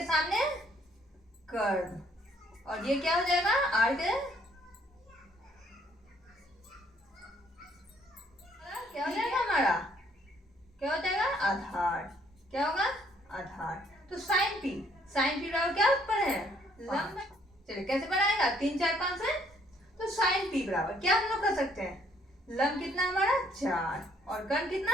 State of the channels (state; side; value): normal; both; correlation 0.65